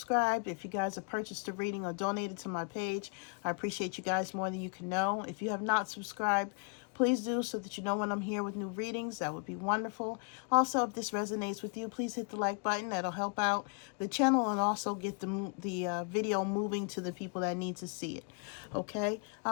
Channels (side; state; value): right; quieter; 38.9 dB